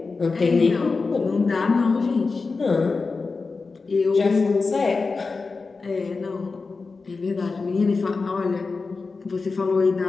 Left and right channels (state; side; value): quieter; right; 4.2 dB